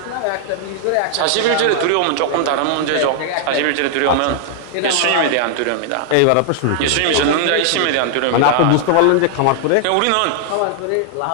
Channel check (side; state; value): both; different; correlation -0.01